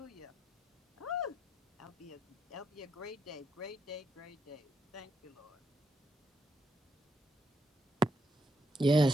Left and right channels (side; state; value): both; normal; correlation 0.79